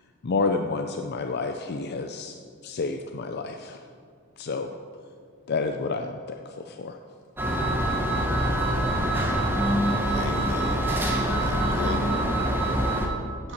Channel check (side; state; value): both; normal; correlation 0.43